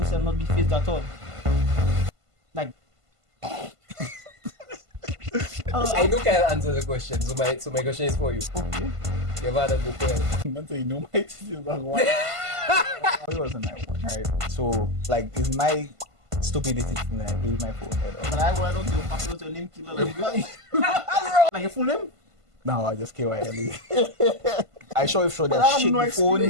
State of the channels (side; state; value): left; late; 1.5 ms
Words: not be phased at all. Like, I know Kyle answer the question, so my question is for you. okay. Your father go Pwell. Man say, no, my teacher was one. It wasn't my one, right? So, like, it's my stupidity to like, leave my phone head But up. I don't give a fuck about your name killer. Like your full name? No, I just KYLE. I show if show But I that have shit no the phone.